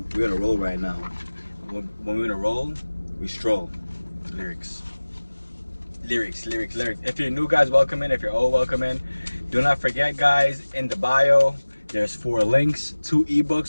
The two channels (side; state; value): both; inverted; correlation -1.00